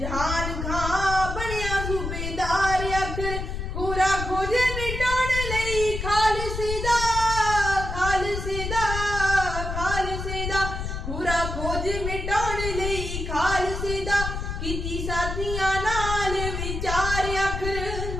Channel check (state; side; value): noise; left; rumble, 4 dB below the sound